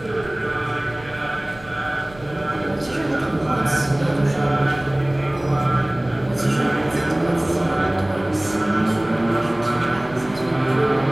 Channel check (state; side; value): noise; right; rumble, 20 dB below the sound